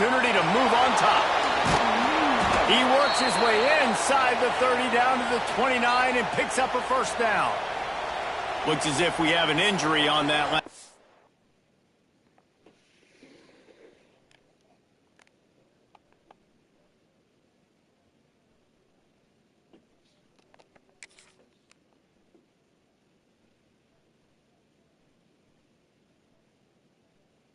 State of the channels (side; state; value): both; identical; correlation 1.00